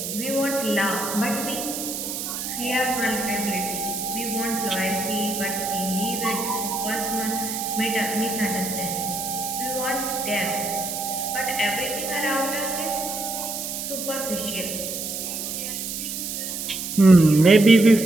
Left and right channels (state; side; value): noise; right; hiss, 5 dB below the sound